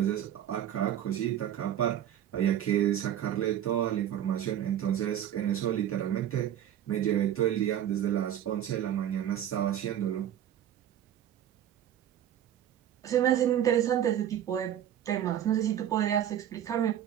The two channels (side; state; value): left; quieter; 10.7 dB